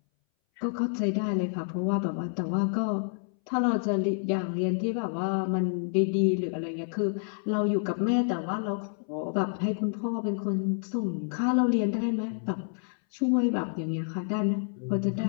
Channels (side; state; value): right; silent; 59 dB below the other